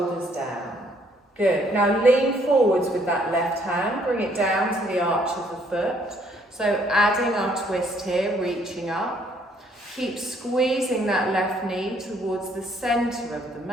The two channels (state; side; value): normal; both; correlation 0.66